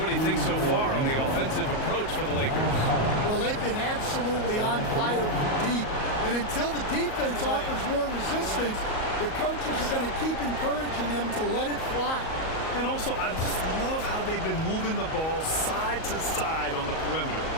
do you think so far on the offensive approach for the Lakers? Well, they've been absolutely on fire from deep. And until the defense offers more resistance, the coaches are going to keep encouraging them to let it fly. And also, I just love how they've been moving the ball side to side on the perimeter.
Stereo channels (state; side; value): late; right; 38 ms